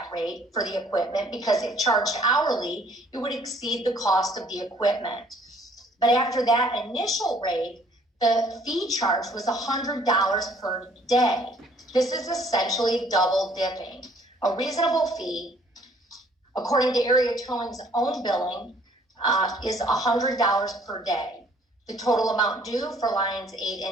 rate for the equipment because if charged hourly, it would exceed the cost of the equipment. But after that initial rate, the fee charge was $100 per day. This is essentially double dipping. A reasonable fee, according to area towing's own billing, is $100 per day. The total amount due for lines 8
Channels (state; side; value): normal; both; correlation 0.60